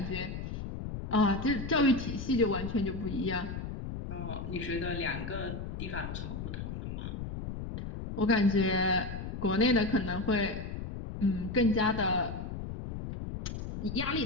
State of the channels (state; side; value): noise; left; rumble, 6 dB below the sound